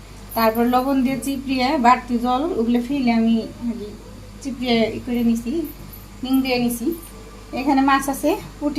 তারপর লবণ দিয়ে চিপড়িয়ে বাড়তি জল ওগুলো ফেলে আমি চিপড়িয়ে করে নিছি, নিং দিয়ে নিছি। এখানে মাছ আছে,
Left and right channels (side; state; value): both; identical; correlation 1.00